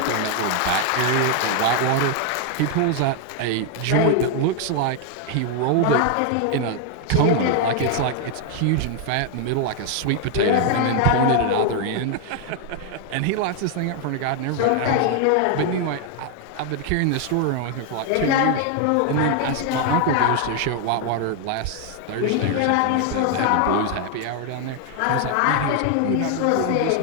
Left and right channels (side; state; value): both; different; correlation 0.01